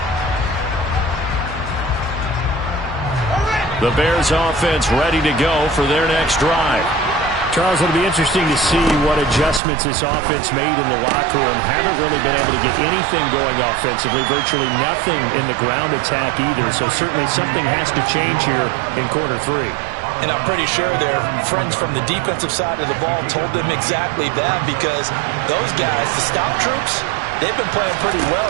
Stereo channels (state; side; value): drops out; left; at 9.6 s